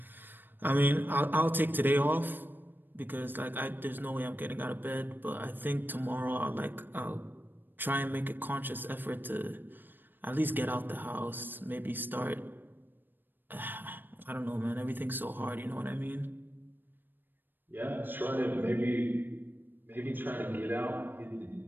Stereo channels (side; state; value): left; late; 0.093 ms